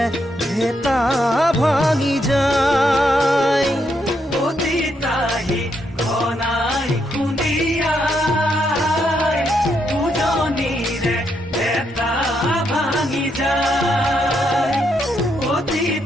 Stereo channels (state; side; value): normal; both; correlation 0.78